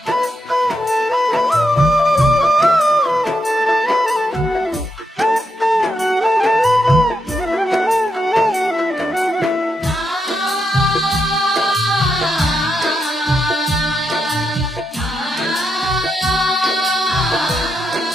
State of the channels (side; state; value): both; normal; correlation 0.83